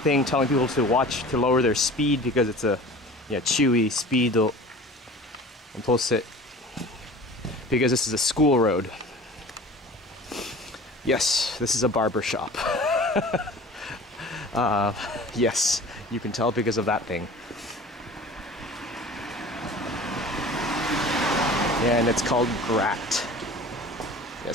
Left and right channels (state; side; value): normal; both; correlation 0.41